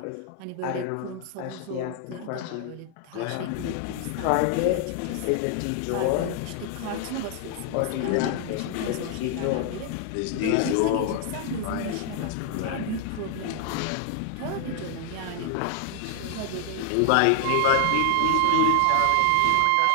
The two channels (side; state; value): both; different; correlation 0.00